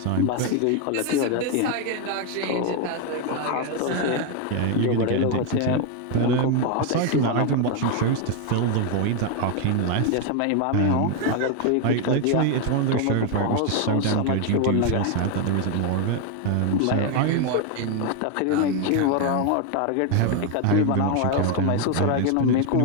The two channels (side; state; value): both; different; correlation 0.01